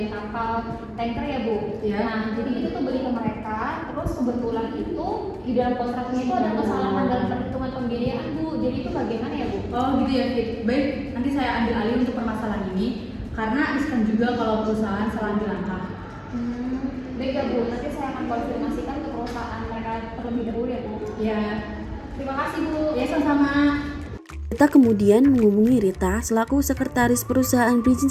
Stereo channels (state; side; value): identical; both; correlation 1.00